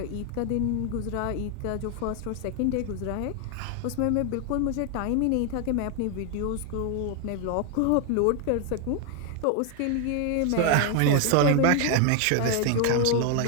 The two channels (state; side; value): different; both; correlation 0.01